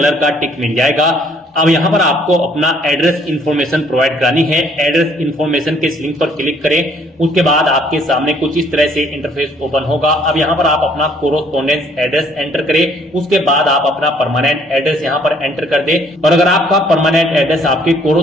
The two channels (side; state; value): both; normal; correlation 0.62